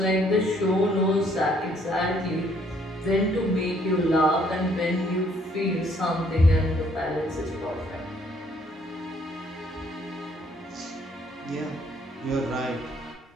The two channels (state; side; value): normal; both; correlation 0.65